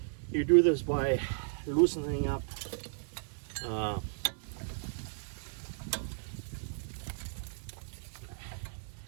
You do this by loosening up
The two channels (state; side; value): silent; left; digital silence